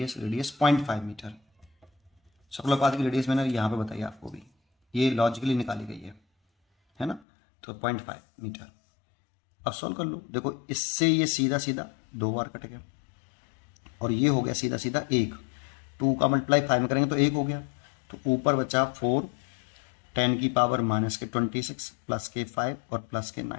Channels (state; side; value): drops out; right; at 7.2 s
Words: 0.5 मीटर। सर्कुलर पाथ की रेडियस मैंने यहाँ पे बताई आपको भी, ये लॉजिकली निकाली गई है ना, तो 0.5 मीटर। अब सॉल्व कर लो, देखो इससे ये सीधा सीधा 2 बार कट गया, और ये हो गया सीधा सीधा 1, 2 का मल्टीप्लाई 5 में करेंगे तो 1 हो गया, तो ऊपर बचा 4 10⁻⁻26 प्लस के 5 और प्लस के